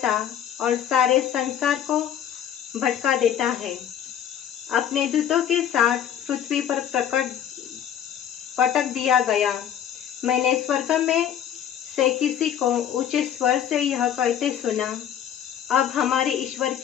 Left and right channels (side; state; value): right; quieter; 9.7 dB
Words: और सारे संसार को भटका देता है, अपने दूतों के साथ पृथ्वी पर पटक दिया गया। मैंने स्वर्ग में से किसी को ऊंचे स्वर से यह कहते सुना, अब हमारे ईश्वर